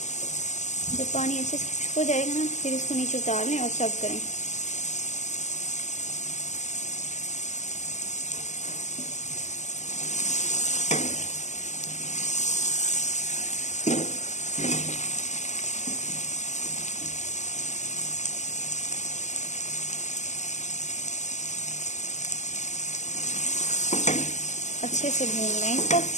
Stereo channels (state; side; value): late; right; 0.34 ms